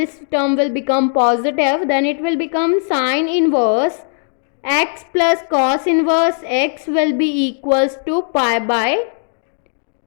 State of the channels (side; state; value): right; silent; digital silence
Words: term will become positive, then it will become sin inverse x plus cos inverse x will be equals to pi by